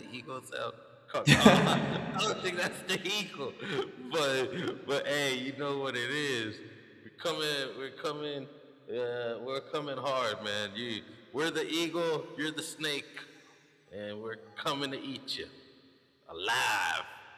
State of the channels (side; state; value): both; identical; correlation 1.00